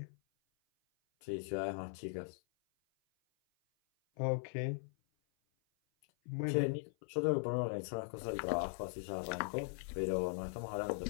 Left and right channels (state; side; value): silent; right; 51 dB below the other